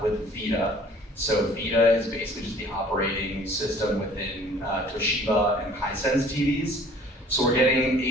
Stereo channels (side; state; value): both; normal; correlation 0.52